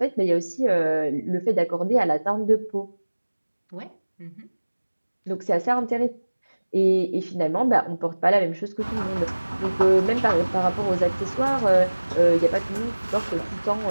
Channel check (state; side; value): inverted; both; correlation -1.00